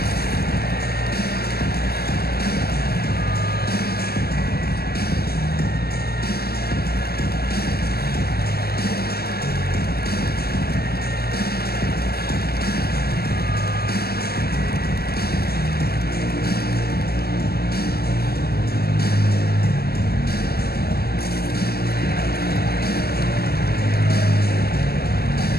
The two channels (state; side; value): late; right; 0.46 ms